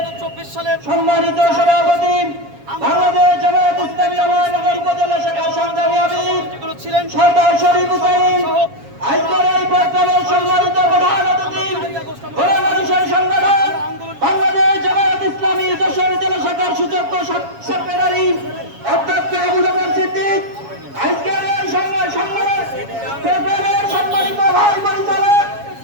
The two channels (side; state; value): left; late; 7.2 ms